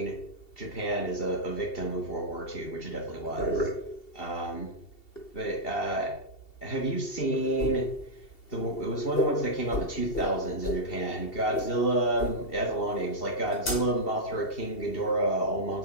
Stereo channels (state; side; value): late; right; 2.7 ms